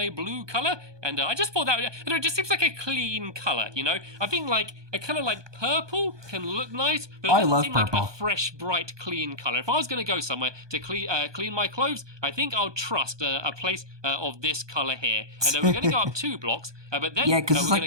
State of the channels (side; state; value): left; late; 1.2 ms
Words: blue color, and I just thought that it just seems like a clean color. You know, I think like a color like purple can look nice, but it doesn't seem like a fresh, bright, clean color. If I was going to go somewhere to clean my clothes, I think I'll trust a place of this color here. And we're going to go up 2 blocks, but then because it's